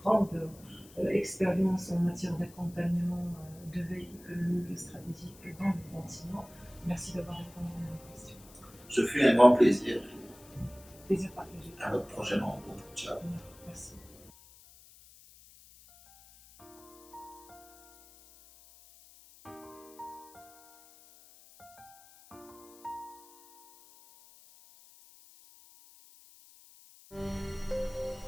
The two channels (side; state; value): left; noise; hiss, 23 dB below the sound